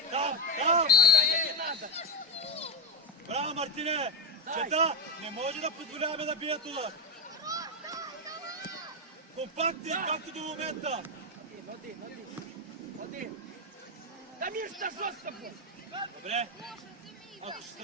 Там. Не надо. Браво, Мартине. Чета, не може да позволяваме да бият удар. Компактни, както до момента. Один. Дамир, что жестко был? Добре. Ако ще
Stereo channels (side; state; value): both; normal; correlation 0.07